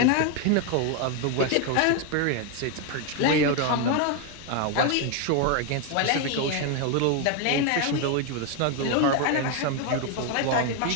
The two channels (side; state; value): both; different; correlation 0.01